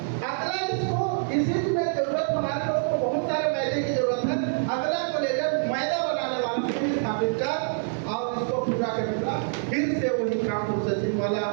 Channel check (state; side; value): silent; left; 61 dB below the other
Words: अगला इसको इसी में जरूरत, हमारे लोगों को बहुत सारे मैदे की जरूरत है, अगला को लेकर मैदा बनाने वाला फिर स्थापित कर और इसको पूरा करना, फिर से वही काम प्रोसेसिंग वाला,